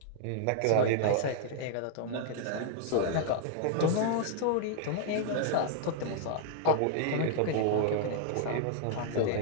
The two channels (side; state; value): both; different; correlation -0.01